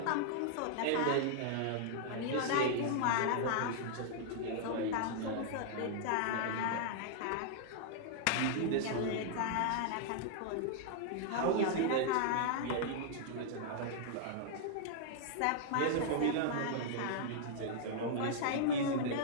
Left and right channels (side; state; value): both; different; correlation -0.01